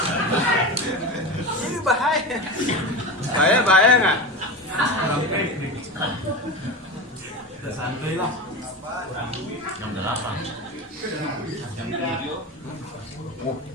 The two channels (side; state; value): both; normal; correlation 0.24